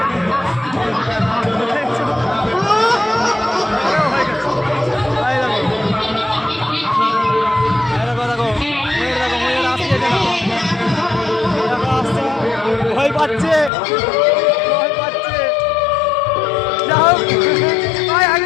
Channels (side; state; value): right; drops out; at 13.7 s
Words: ভয় পাচ্ছে, ভয় পাচ্ছে। যাও ভাই